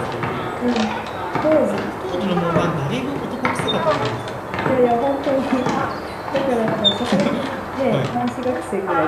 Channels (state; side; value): identical; both; correlation 1.00